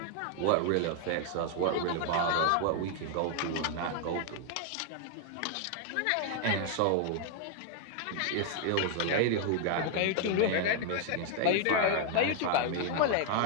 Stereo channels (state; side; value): different; both; correlation 0.00